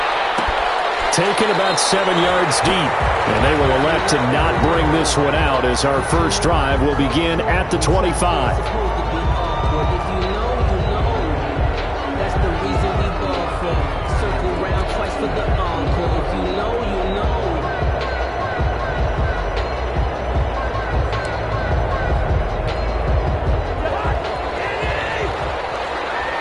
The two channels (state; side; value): identical; both; correlation 1.00